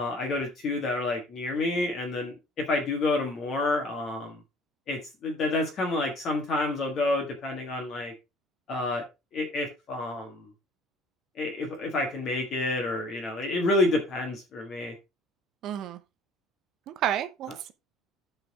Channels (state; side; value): normal; both; correlation 0.52